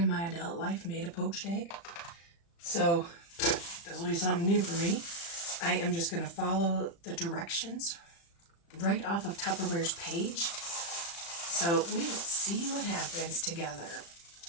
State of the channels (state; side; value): late; right; 35 ms